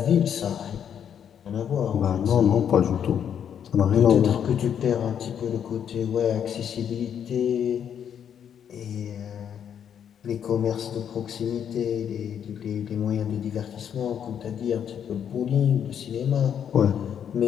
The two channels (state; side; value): quieter; right; 8.6 dB